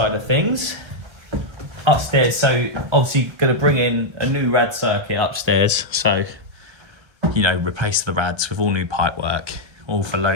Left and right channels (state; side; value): late; left; 1.3 ms